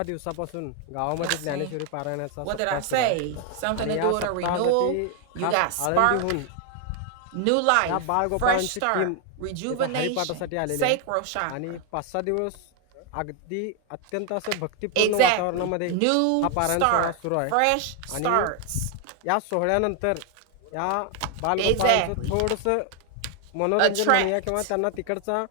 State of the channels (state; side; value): different; both; correlation 0.01